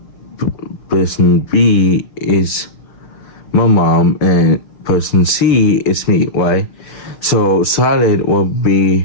person B is my mom, and person C is me, right? So Charlotte will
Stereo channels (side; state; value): right; late; 5.9 ms